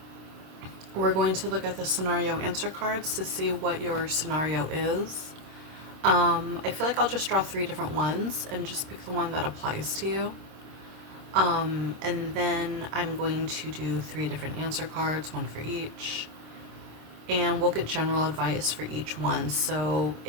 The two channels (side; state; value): left; late; 26 ms